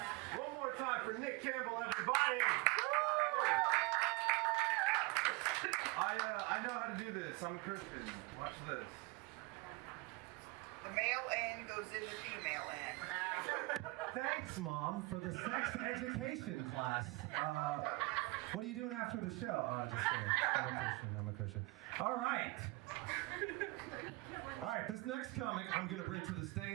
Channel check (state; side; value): quieter; left; 24.0 dB